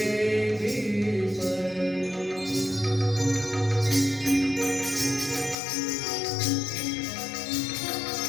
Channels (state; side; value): drops out; right; at 5.6 s